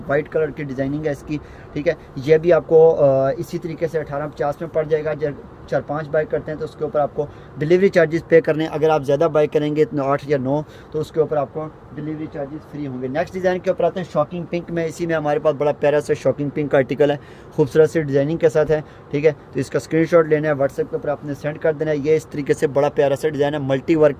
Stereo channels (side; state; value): both; identical; correlation 1.00